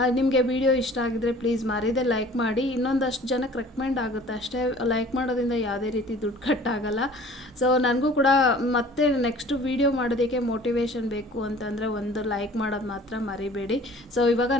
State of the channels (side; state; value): both; normal; correlation 0.48